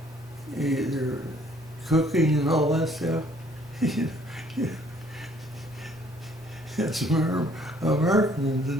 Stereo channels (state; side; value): normal; both; correlation 0.61